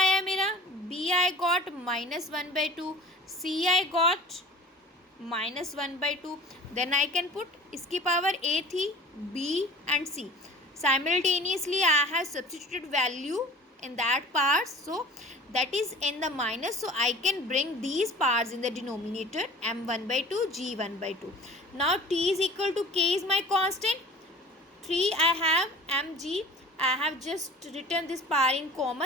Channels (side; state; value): both; normal; correlation 0.44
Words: मेरा, B I got minus 1 by 2, C I got minus 1 by 2. Then I can put इसकी power A थी, B and C. Simultaneously I have substituted value in that part, so that is in the minus, so I can bring these parts in the denominator, m1 by 2, g1 by 2. Now T is equal to K is my constant, 3 I have mg, I have just written this power in